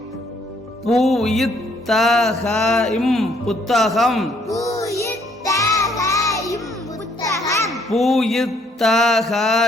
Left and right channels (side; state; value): both; normal; correlation 0.67